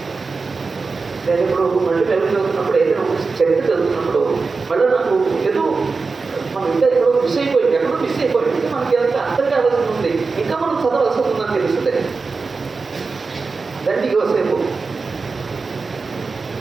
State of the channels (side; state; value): left; quieter; 4.3 dB